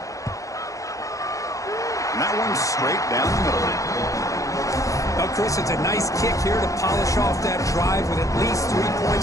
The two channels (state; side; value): late; right; 0.16 ms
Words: And that one's straight down the middle. Well, Chris, it's a nice kick here to polish off that drive with at least 3